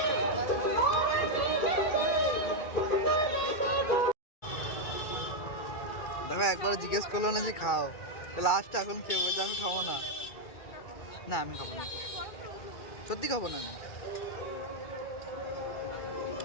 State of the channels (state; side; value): late; right; 2.3 ms